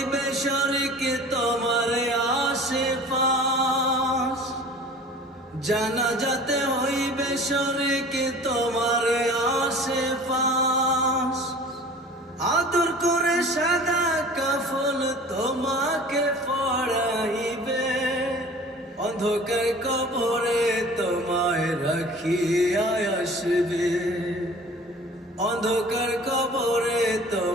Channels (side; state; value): both; normal; correlation 0.44